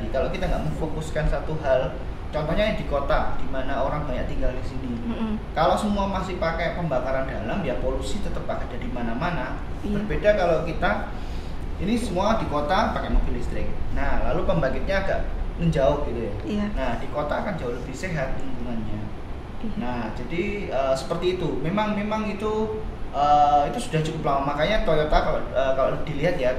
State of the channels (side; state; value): both; identical; correlation 1.00